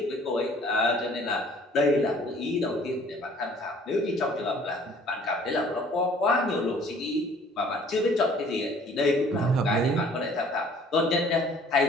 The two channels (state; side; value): normal; both; correlation 0.55